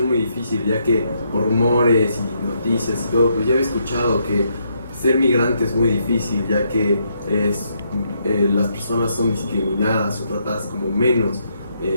muy difícil, ya que por rumores y noticias y todo, pues ya había escuchado que ser migrante es muy difícil, ya que las personas son discriminadas o tratadas como menos.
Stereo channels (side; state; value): both; inverted; correlation -0.76